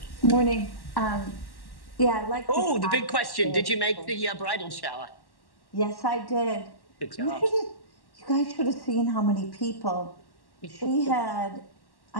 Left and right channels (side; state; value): right; late; 1.1 ms